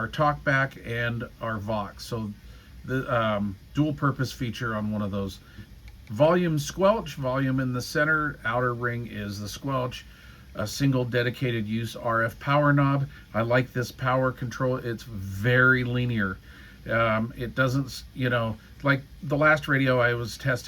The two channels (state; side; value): identical; both; correlation 1.00